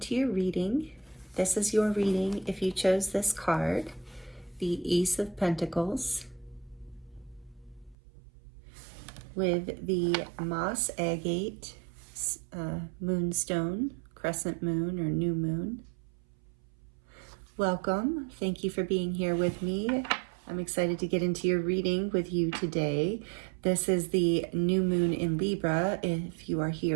your reading. This is your reading if you chose this card, the Ace of Pentacles, with the Moss Agate moonstone, crescent moon or new moon. Welcome. Thank you for being here with me. I'm excited to get into your reading with you today. This is the new moon in Libra if you are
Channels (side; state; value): left; drops out; at 8.0 s